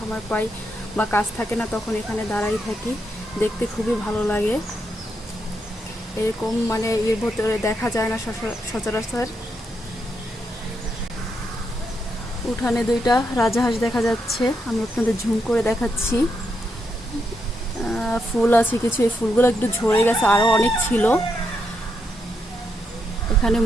পাই বা কাজ থাকে না তখন এখানে দাঁড়াই থাকি, দেখতে খুবই ভালো লাগে। এরকম এর ভেতরে দেখা যায় না সচরাচর। উঠানে দুইটা রাজাহাঁস দেখা যাচ্ছে, আমি আপনাদের ঝুম করে দেখাচ্ছি। ফুল আছে কিছু, এই ফুলগুলো একটু ঝরে গেছে, আরও অনেক ছিল। এখানে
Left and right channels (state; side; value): normal; both; correlation 0.81